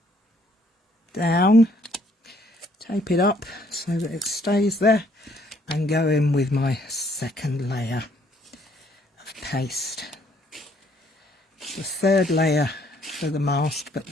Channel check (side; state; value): both; normal; correlation 0.65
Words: down. Tape it up so that it stays there. And go in with my second layer of paste. The third layer for the mask, but